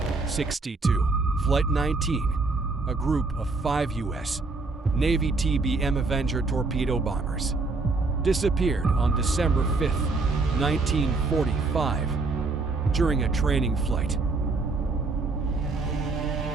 Flight 19, a group of 5 U.S. Navy TBM Avenger torpedo bombers, disappeared on December 5, 1945, during a training flight.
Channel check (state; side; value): quieter; left; 3.8 dB